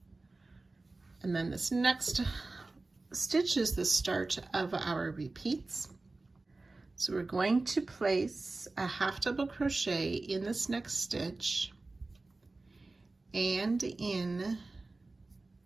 And then this next stitch is the start of our repeats. So we're going to place a half double crochet in this next stitch and in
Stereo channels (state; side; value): quieter; left; 3.3 dB